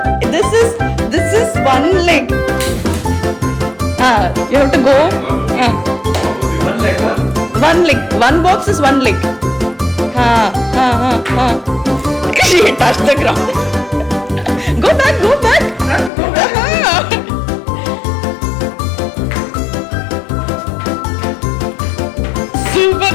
This is one leg. You have to go. One leg. One box is one leg. She touched the ground. Go back. Super.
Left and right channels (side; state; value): right; drops out; at 16.1 s